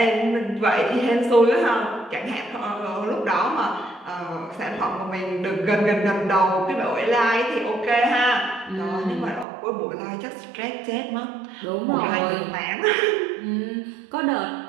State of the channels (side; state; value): left; drops out; at 9.5 s